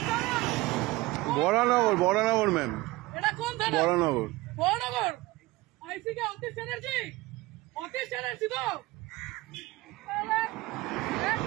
বরানগর, বরানগর ম্যাম। এটা কোন থানা? বরানগর। বরানগর আইসি কে অতীশ চ্যাটার্জি? অতীশ চ্যাটার্জি তো? একদম না,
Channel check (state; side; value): quieter; left; 20.2 dB